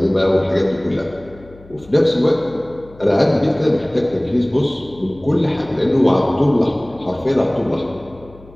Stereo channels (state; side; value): noise; left; hum, 22 dB below the sound